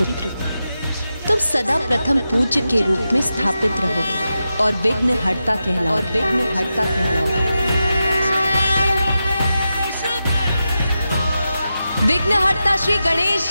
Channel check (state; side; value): inverted; both; correlation -0.90